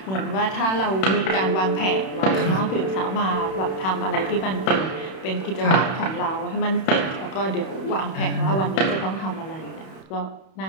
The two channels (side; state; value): right; late; 31 ms